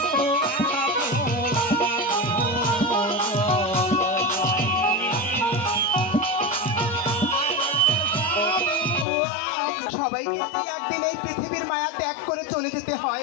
সবাইকে কি একদিন এই পৃথিবীর মায়া ত্যাগ করে চলে যেতে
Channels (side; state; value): right; drops out; at 9.1 s